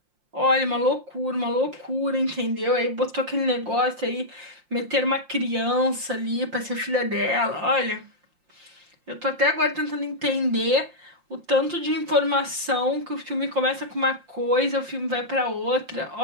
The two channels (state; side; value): late; left; 5.7 ms